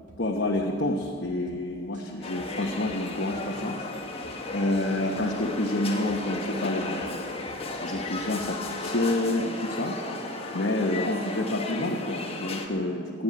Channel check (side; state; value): both; normal; correlation 0.37